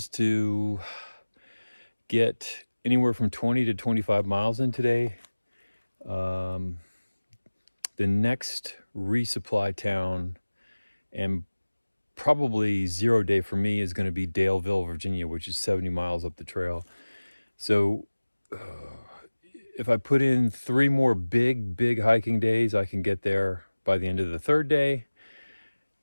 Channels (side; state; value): both; inverted; correlation -1.00